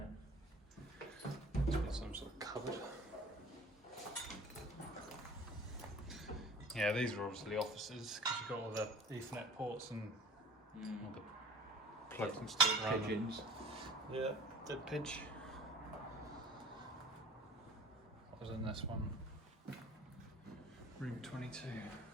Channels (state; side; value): normal; both; correlation 0.45